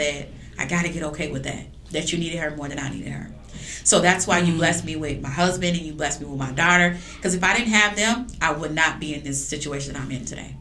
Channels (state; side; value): identical; both; correlation 1.00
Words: I got to get okay with that. That you needed her more than I needed her. So that's why you blessed me with my husband and you blessed me with my daughter. Because if I didn't have them, I would not be in this situation I'm in today.